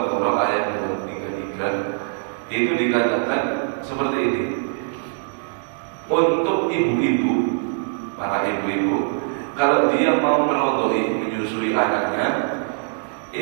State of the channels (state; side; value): silent; left; 64 dB below the other